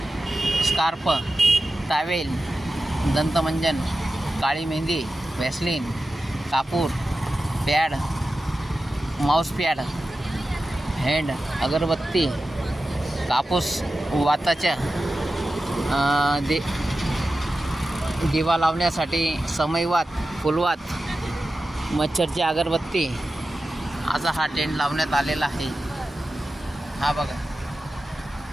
स्कार्फ, टावेल, दंतमंजन, काळी मेहंदी, व्हॅसलीन, कापूर, पॅड, माऊस पॅड, हँड अगरबत्ती, कापूस, वाताच्या दिवा लावण्यासाठी समईवात, फुलवात, मच्छरची अगरबत्ती असा हा टेंट लावण्यात आलेला आहे. हा बघा,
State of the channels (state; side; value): normal; both; correlation 0.93